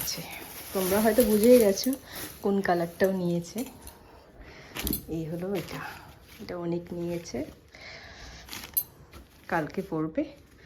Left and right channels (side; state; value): both; identical; correlation 1.00